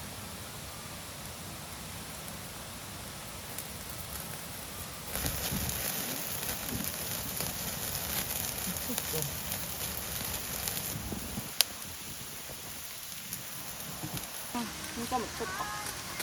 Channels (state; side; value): identical; both; correlation 1.00